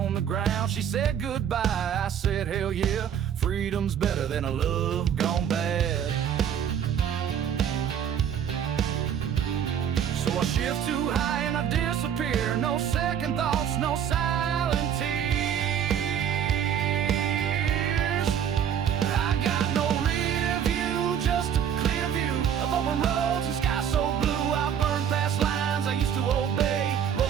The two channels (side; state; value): left; quieter; 8.8 dB